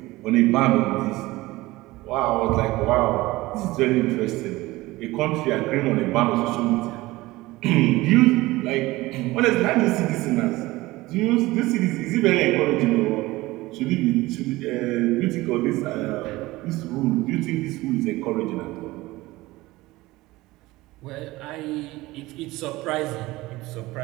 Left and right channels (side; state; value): left; quieter; 19.4 dB